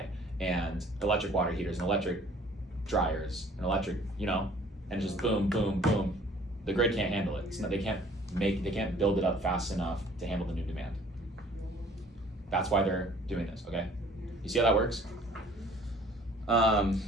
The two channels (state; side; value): normal; both; correlation 0.54